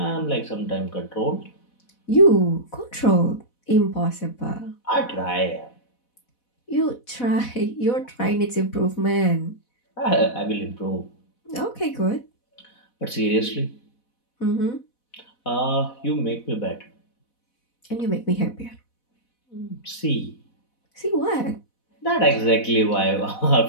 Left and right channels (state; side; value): late; right; 4.1 ms